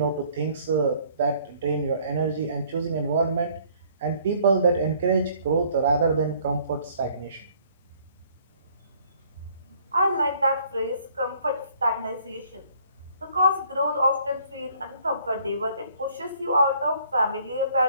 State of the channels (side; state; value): both; inverted; correlation -0.61